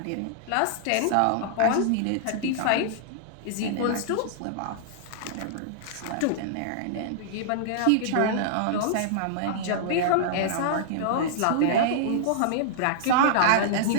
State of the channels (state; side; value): different; both; correlation -0.02